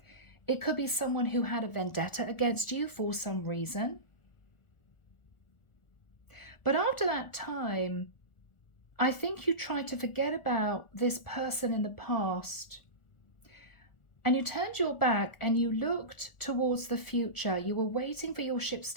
It could be someone who had a vendetta against you for some reason. But after that time, I think you tried to forget about this person in the past. And you turned your back and you looked towards the future. You were waiting for your ships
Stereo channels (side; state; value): right; late; 1.4 ms